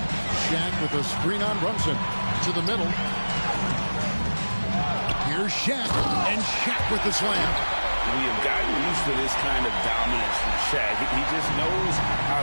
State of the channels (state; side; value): inverted; both; correlation -1.00